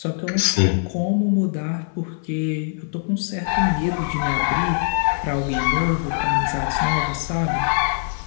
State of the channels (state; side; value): silent; right; 57 dB below the other